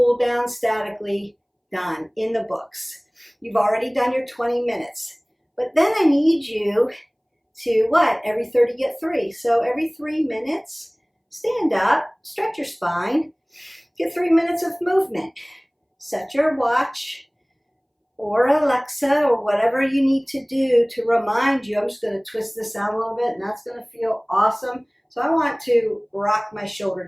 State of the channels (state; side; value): identical; both; correlation 1.00